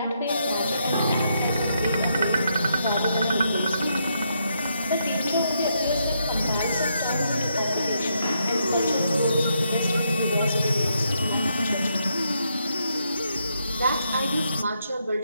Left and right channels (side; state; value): both; inverted; correlation -0.79